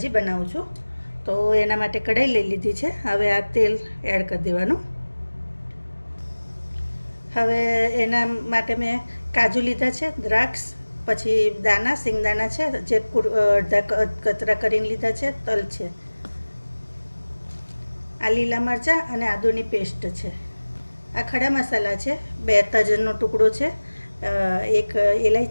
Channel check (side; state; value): both; inverted; correlation -1.00